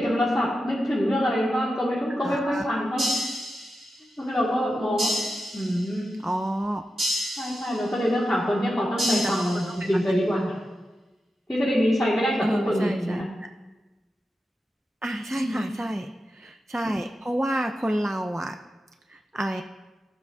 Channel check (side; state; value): both; normal; correlation 0.90